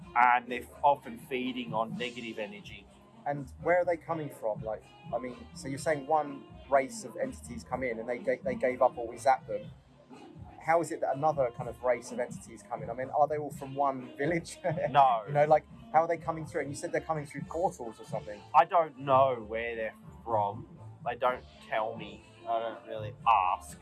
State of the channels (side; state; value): both; identical; correlation 1.00